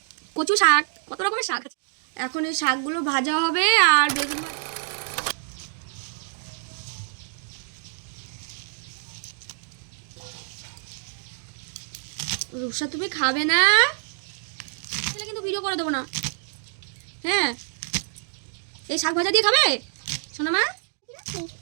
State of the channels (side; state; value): left; silent; digital silence